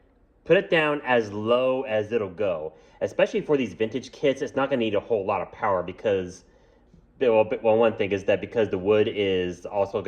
put it down as low as it'll go. Especially for these vintage kits, it's not going to need a whole lot of power because, well, one thing is that because the wood is also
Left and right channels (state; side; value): identical; both; correlation 1.00